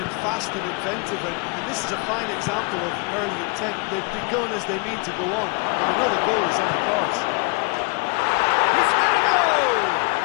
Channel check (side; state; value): right; quieter; 31.8 dB